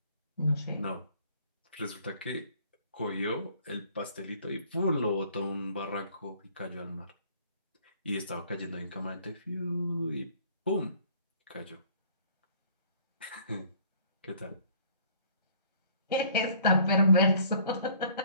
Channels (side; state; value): both; inverted; correlation -0.56